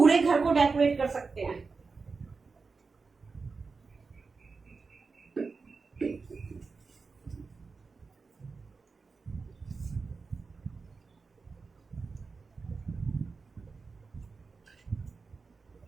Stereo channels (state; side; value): quieter; left; 4.5 dB